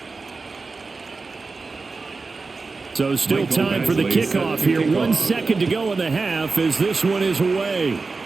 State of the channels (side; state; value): left; quieter; 4.1 dB